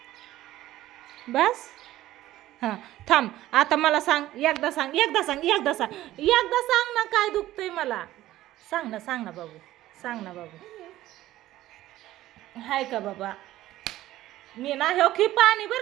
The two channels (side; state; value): left; quieter; 15.0 dB